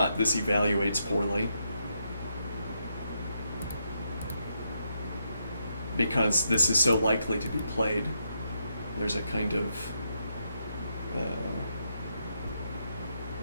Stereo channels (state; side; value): inverted; both; correlation -0.80